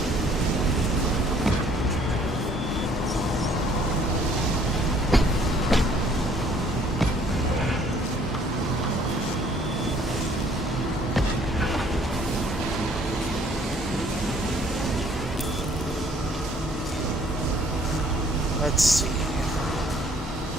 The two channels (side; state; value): both; normal; correlation 0.59